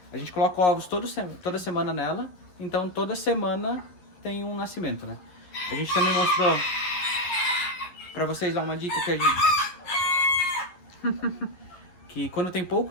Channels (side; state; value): right; late; 11 ms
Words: A gente coloca ovos toda semana nela. Então, toda semana tem um nascimento, né? A gente também mostrou para vocês lá uma dica que a gente... que quando tem